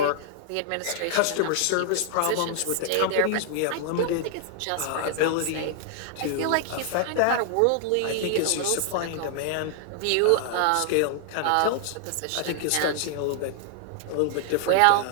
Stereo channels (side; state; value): both; different; correlation 0.00